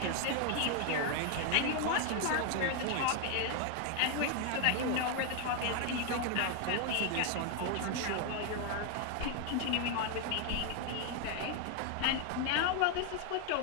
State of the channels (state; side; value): different; both; correlation 0.01